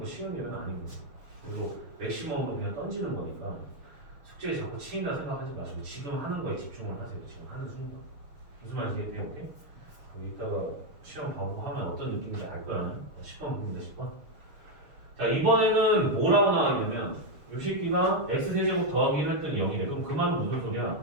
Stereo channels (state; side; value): late; left; 6.8 ms